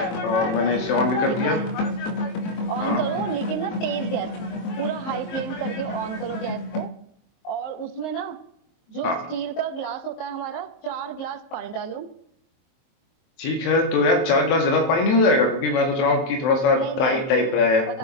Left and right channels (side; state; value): right; late; 23 ms